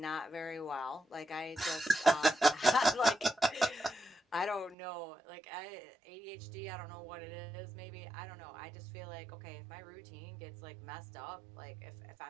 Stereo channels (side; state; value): left; drops out; at 4.8 s